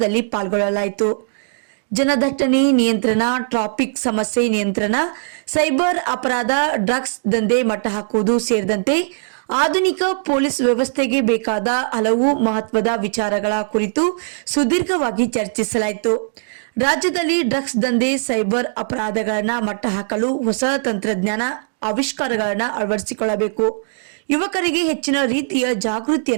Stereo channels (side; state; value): left; silent; digital silence